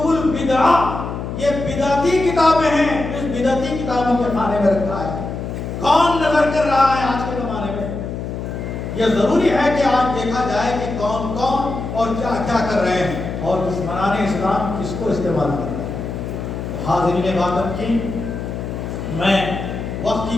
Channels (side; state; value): left; noise; hum, 6 dB below the sound